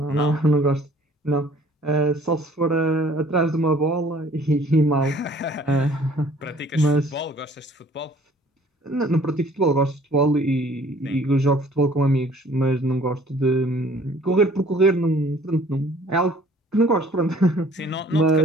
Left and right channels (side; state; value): both; normal; correlation 0.55